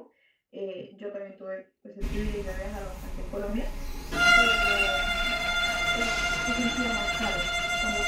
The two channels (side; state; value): both; identical; correlation 1.00